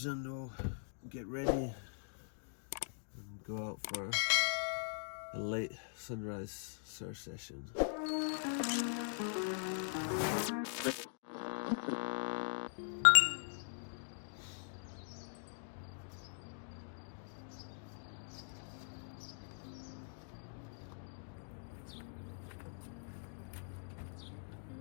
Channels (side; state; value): right; silent; digital silence